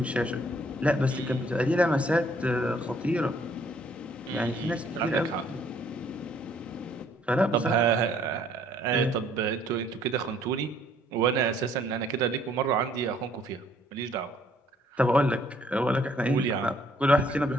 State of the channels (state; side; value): normal; both; correlation 0.63